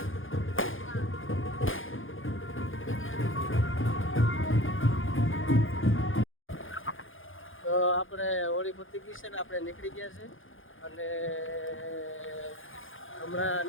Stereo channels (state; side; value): late; right; 0.58 ms